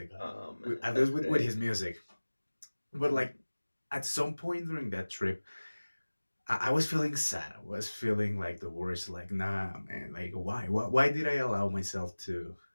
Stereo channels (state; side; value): inverted; both; correlation -1.00